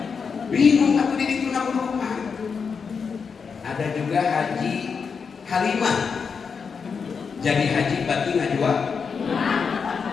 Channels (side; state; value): right; quieter; 5.8 dB